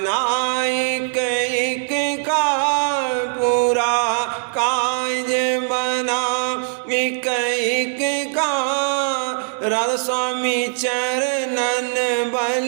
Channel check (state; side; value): silent; left; 62 dB below the other